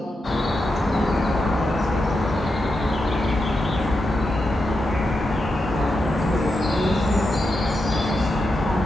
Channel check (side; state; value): both; normal; correlation 0.87